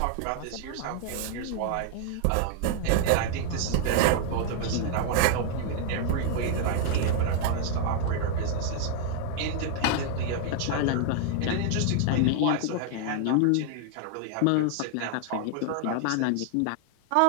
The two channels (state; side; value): different; both; correlation 0.00